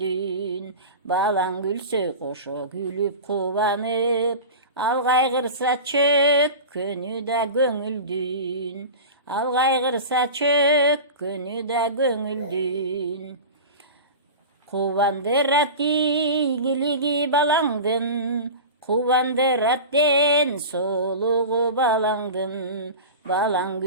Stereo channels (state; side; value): inverted; both; correlation -0.31